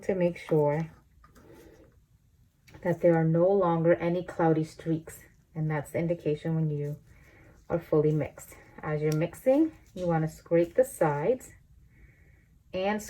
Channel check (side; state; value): both; identical; correlation 1.00